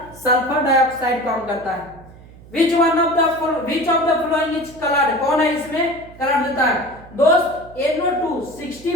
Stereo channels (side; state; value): right; noise; hum, 21 dB below the sound